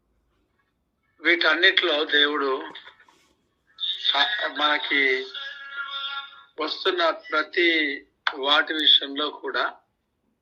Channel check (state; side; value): identical; both; correlation 1.00